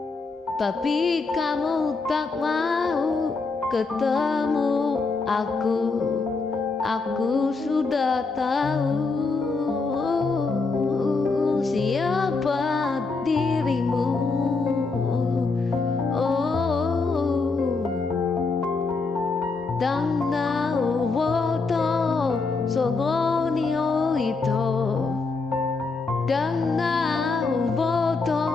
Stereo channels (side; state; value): right; quieter; 4.1 dB